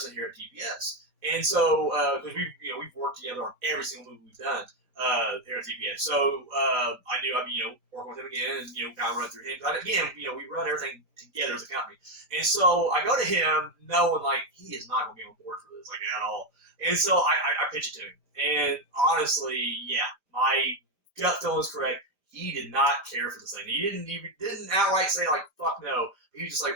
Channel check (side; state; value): left; late; 5.0 ms